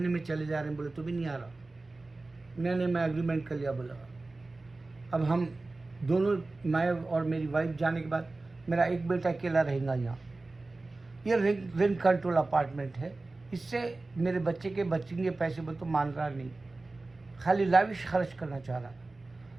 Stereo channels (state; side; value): quieter; left; 3.3 dB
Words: में चले जा रहे हैं। बोले तो भी नहीं आ रहा। मैं एग्रीमेंट कर लिया, बोला अब हम दोनों, मैं और मेरी वाइफ जाने के बाद मेरा एक बेटा अकेला रहेगा यहाँ। ये रेंट कंट्रोल अपार्टमेंट है, इससे मेरे बच्चे के बचेंगे पैसे, बोले तो मान रहा नहीं, खाली लाविश खर्च करना चाह रहा है।